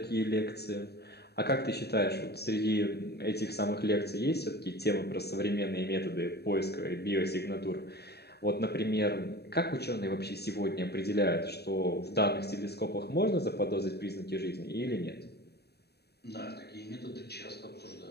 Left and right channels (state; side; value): late; right; 0.47 ms